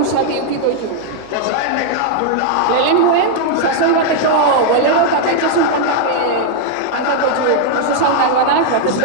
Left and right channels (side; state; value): both; different; correlation 0.00